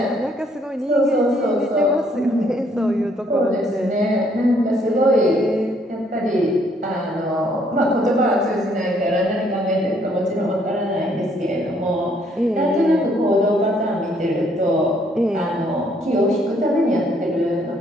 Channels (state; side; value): normal; both; correlation 0.67